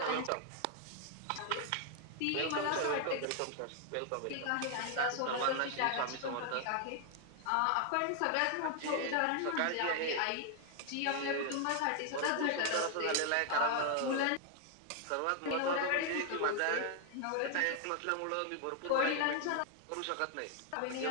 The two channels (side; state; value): both; different; correlation 0.00